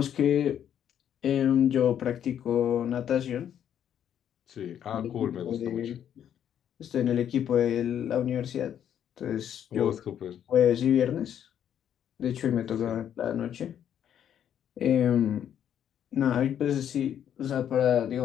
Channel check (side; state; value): right; quieter; 9.6 dB